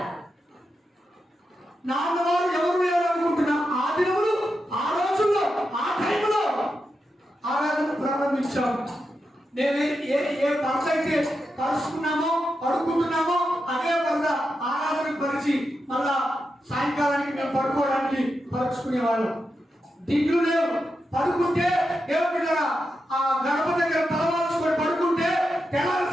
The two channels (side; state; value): both; normal; correlation 0.87